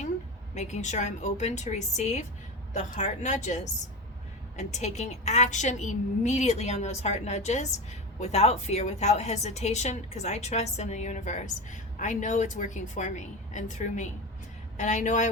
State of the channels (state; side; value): normal; both; correlation 0.24